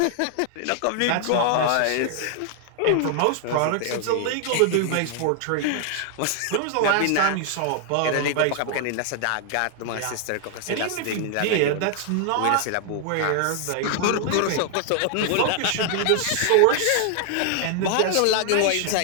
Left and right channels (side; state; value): both; different; correlation 0.00